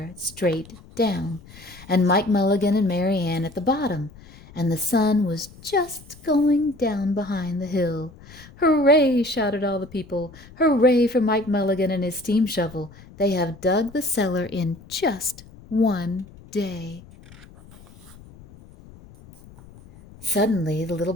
straight down, and Mike Mulligan and Mary Ann at the bottom, and the sun was just going down behind the hill. "Hooray!" shouted all the people. "Hooray for Mike Mulligan and his steam shovel. They have dug the cellar in just one day." Suddenly the little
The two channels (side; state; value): left; noise; rumble, 21 dB below the sound